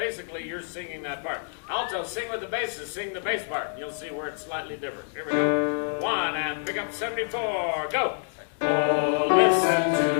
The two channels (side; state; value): right; silent; digital silence